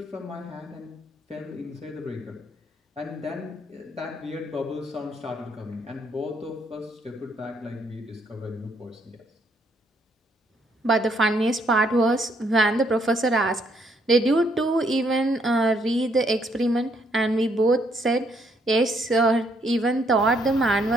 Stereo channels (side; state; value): both; normal; correlation 0.71